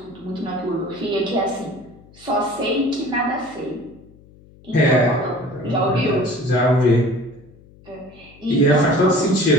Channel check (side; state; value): left; noise; hum, 25 dB below the sound